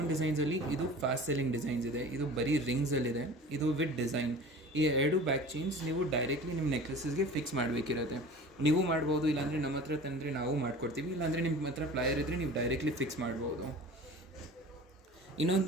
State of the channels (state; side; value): normal; both; correlation 0.40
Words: ಡಿಸೈನ್ಸಲ್ಲಿ ಇದು ಫಾಸ್ಟ್ ಸೆಲ್ಲಿಂಗ್ ಡಿಸೈನ್ಸ್ ಇದೆ. ಇದು ಬರೀ ರಿಂಗ್ಸಲ್ಲಿದೆ. ಇದು ವಿತ್ ಡಿಸೈನ್. ಈ ಎರಡು ಬ್ಯಾಕ್ ಚೈನ್ಸ್ ನೀವು ಡೈರೆಕ್ಟ್ಲಿ ನಿಮ್ಮ ನೆಕ್ಲೆಸಸ್ಗೆ ಫಿಕ್ಸ್ ಮಾಡಬೇಕಿರುತ್ತೆ. ನೀವು ಮಾಡ್ಬೋದು, ಇಲ್ಲಾಂದರೆ ನಮ್ಮ ಹತ್ರ ತಂದರೆ ನಾವು ಮಾಡ್ಕೊಡ್ತೀವಿ. ಇಲ್ಲಾಂದರೆ ನಿಮ್ಮ ಹತ್ರ ಪ್ಲಾಯರ್ ಇದ್ದರೆ ನೀವು ಡೈರೆಕ್ಟ್ಲಿ ಫಿಕ್ಸ್ ಮಾಡ್ಬೋದು.